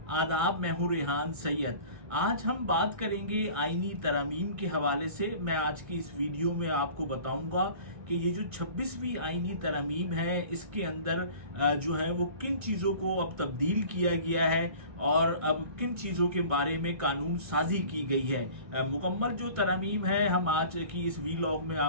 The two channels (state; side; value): late; left; 1.6 ms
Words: आदाब, मैं हूँ रेहान सैयद। आज हम बात करेंगे आईनी तरमीम के हवाले से। मैं आज की इस वीडियो में आपको बताऊंगा कि ये जो 26वीं आईनी तरमीम है, इसके अंदर जो है वो किन चीज़ों को अब तब्दील किया गया है और अब किन चीज़ों के बारे में कानून साजी की गई है। मुकम्मल जो तरमीम है हम आज की इस वीलॉग में